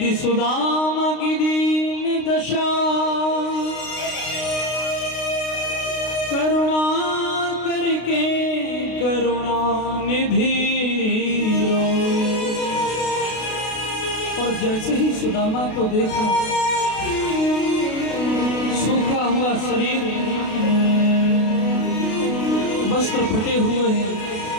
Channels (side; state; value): right; late; 32 ms